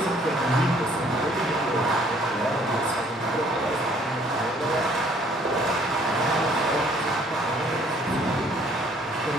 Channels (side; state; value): both; normal; correlation 0.61